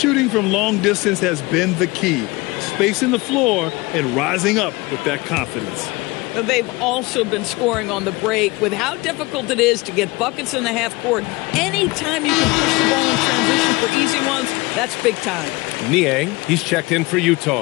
from long distance has been the key. Spacing the floor and rising up with that confidence. They've also been scoring on the break. With how difficult it is to get buckets in the half court, anytime you can push the ball in transition for easy ones, that's big time. Niang, he's checked in for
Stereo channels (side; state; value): right; quieter; 23.0 dB